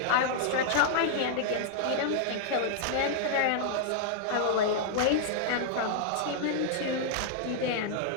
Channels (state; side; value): different; both; correlation -0.01